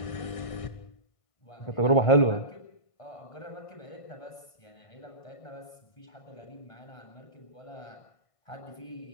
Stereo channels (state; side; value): late; right; 1.5 ms